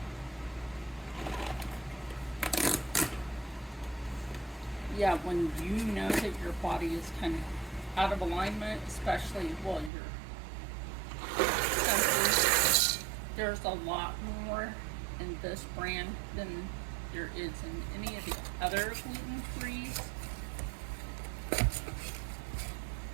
Yeah, when you know that your body is kind of out of alignment, especially while you're senses, there's a lot more in this brand than there is in any of the other gluten-free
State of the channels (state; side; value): drops out; left; at 9.9 s